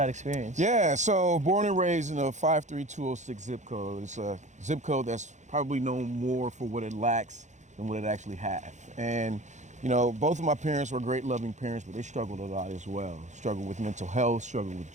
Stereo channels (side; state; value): left; late; 0.34 ms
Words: experience. Yeah, so born and raised in a 53206 zip code. It's a zip code that's probably known more for what it lacks than what it actually has. And you know, both of my parents were great loving parents, but they struggled a lot as well. Struggled with mental health, struggled with